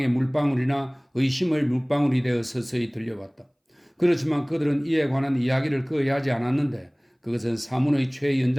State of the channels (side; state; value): both; identical; correlation 1.00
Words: 물방울이나 의심의 물방울이 되어 서서히 들려왔다. 그렇지만 그들은 이에 관한 이야기를 거의 하지 않았는데 그것은 사문의